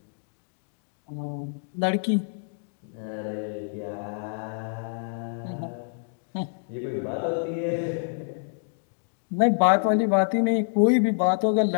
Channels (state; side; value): silent; right; digital silence